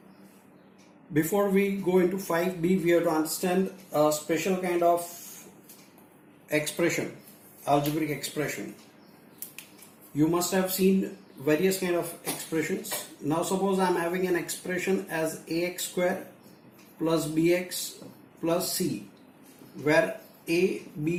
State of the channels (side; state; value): both; identical; correlation 1.00